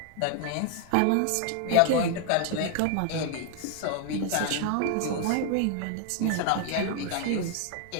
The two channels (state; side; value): different; both; correlation 0.00